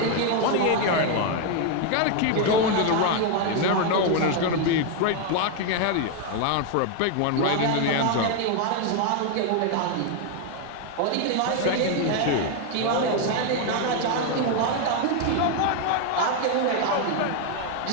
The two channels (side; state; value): both; different; correlation 0.01